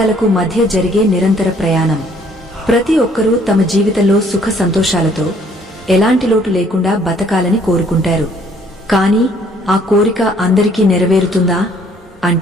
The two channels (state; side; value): normal; both; correlation 0.62